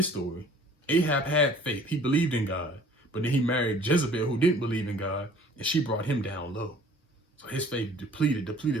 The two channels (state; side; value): normal; both; correlation 0.52